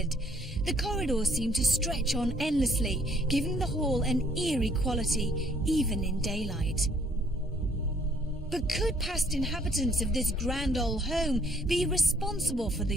The corridors seemed to stretch on endlessly, giving the hall an eerie quality, even in daylight. But could past inhabitants of this grand old home be responsible for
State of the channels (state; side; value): normal; both; correlation 0.63